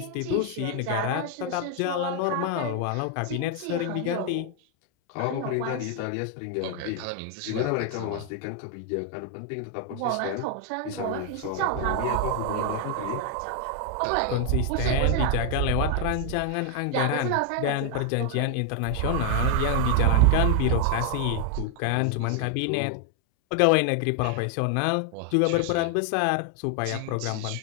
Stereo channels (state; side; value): different; both; correlation 0.00